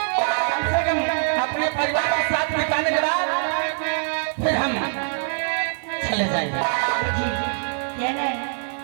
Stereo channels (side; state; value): left; silent; digital silence